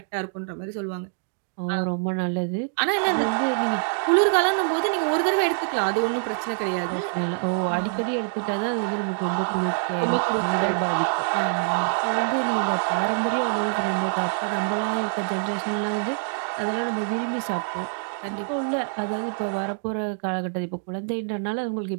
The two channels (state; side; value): silent; left; 62 dB below the other